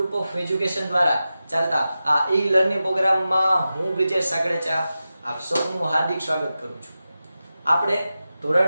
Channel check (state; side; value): inverted; both; correlation -0.93